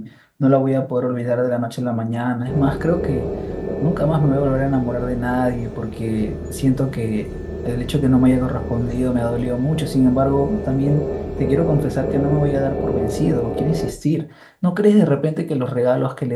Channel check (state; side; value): identical; both; correlation 1.00